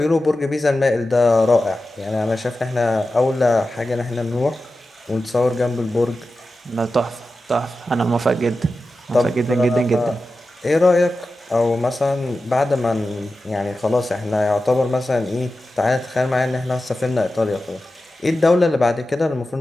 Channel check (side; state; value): both; normal; correlation 0.93